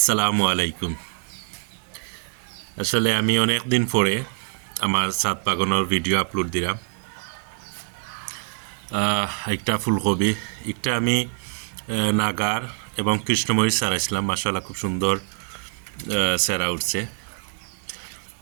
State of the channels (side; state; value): left; silent; 62 dB below the other